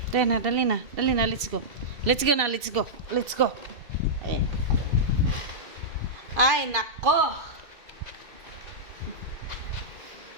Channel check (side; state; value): left; late; 2.7 ms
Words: Dali na, dali na. Dali na, let's go. Let's go na, let's go. Let's go. Ayan. Ay, nako.